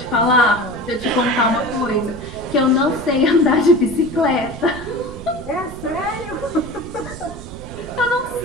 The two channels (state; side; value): noise; right; rumble, 13 dB below the sound